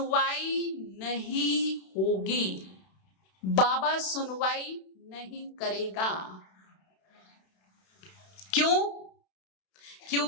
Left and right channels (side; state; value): right; late; 32 ms